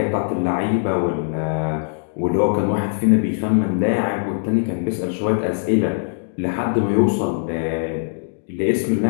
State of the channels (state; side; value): silent; right; 60 dB below the other